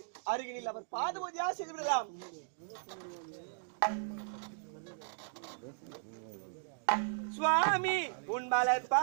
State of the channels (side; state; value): left; silent; digital silence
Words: அருகினில் அவர் பாத பூஜையா செய்து விடலாம். சுவாமி உன் மலர்